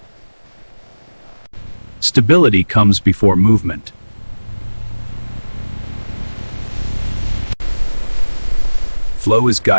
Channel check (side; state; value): both; inverted; correlation -1.00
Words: Stability comes before movement. Flow is